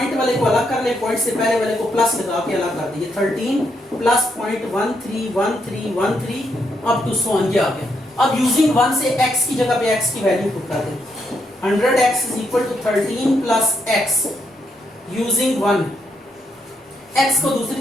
वाले को अलग कर लें, पॉइंट से पहले वाले को प्लस लगा के अलग कर दीजिए। 13 प्लस पॉइंट 1313 अप टू 100 ये आ गया। अब यूजिंग 1 से x की जगह पे x की वैल्यू पुट कर दें। 100x is equal to 13 plus x using 1, x को दूसरी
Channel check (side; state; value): both; normal; correlation 0.78